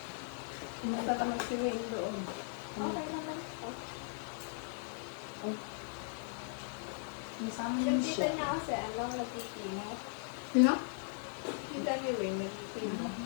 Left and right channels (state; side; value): silent; right; 52 dB below the other